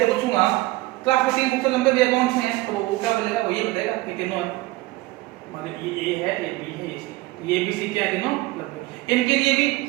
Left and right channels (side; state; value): left; quieter; 19.6 dB